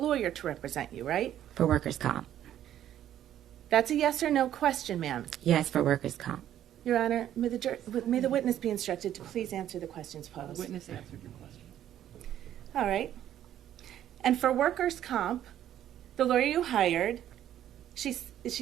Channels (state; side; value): quieter; left; 11.4 dB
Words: to represent you, right? For workers' comp. That's a yes or no question, ma'am. Yes, for workers' comp. Your Honor, may the witness be instructed to please answer the questions posed. Witness answered your question. All right. And for workers' comp, the lawyer you hired, is